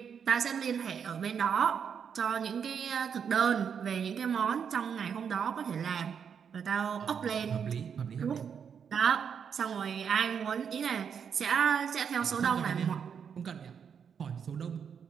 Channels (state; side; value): quieter; left; 7.2 dB